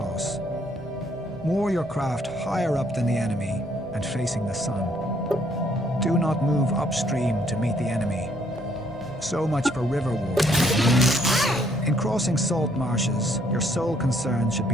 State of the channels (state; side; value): normal; both; correlation 0.67